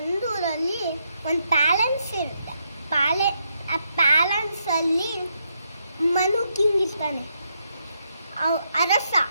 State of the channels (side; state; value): both; inverted; correlation -0.79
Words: ಒಂದು ಪ್ಯಾಲೆನ್ಸ್ ಇರುತ್ತೆ. ಆ ಪ್ಯಾಲೆನ್ಸಲ್ಲಿ ಮನು ಕಿಂಗ್ ಇರ್ತಾನೆ, ಅರಸ.